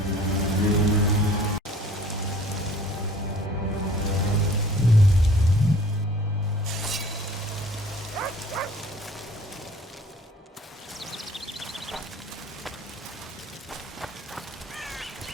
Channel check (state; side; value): normal; both; correlation 0.51